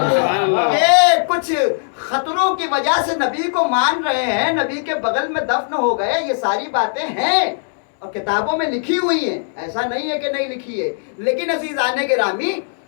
یہ کچھ خطروں کی وجہ سے نبی کو مان رہے ہیں، نبی کے بغل میں دفن ہو گئے، یہ ساری باتیں ہیں اور کتابوں میں لکھی ہوئی ہیں، ایسا نہیں ہے کہ نہیں لکھی ہے. لیکن عزیزان گرامی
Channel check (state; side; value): silent; right; digital silence